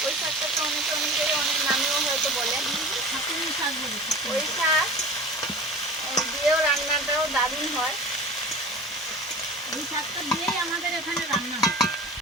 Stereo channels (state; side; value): normal; both; correlation 0.37